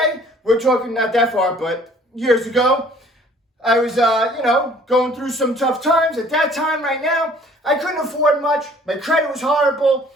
we're talking not that far, but years ago, I was, going through some tough times. At that time, right now, I couldn't afford much. My credit was horrible,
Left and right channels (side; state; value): both; normal; correlation 0.55